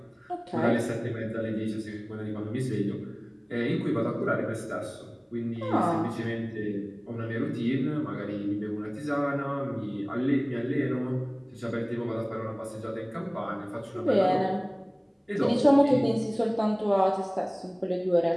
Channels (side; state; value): both; identical; correlation 1.00